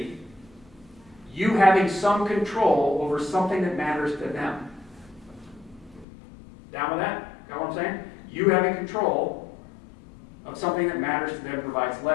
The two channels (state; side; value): drops out; right; at 6.1 s